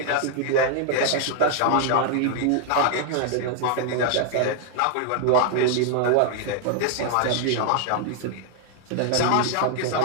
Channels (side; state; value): both; different; correlation 0.00